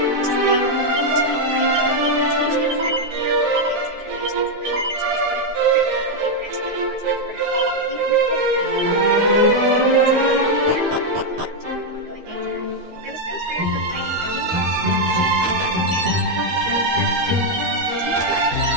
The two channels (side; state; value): left; late; 13 ms